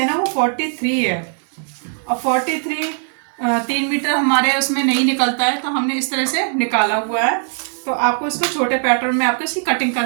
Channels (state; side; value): silent; left; 56 dB below the other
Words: ना वो 43 है और 43 3 मीटर हमारे उसमें नहीं निकलता है, तो हमने इस तरह से निकाला हुआ है। तो आपको इसको छोटे पैटर्न में आपको इसकी कटिंग